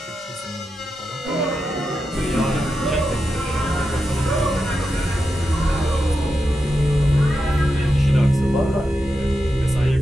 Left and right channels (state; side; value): normal; both; correlation 0.89